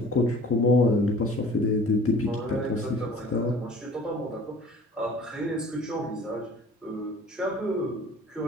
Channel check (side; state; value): both; normal; correlation 0.47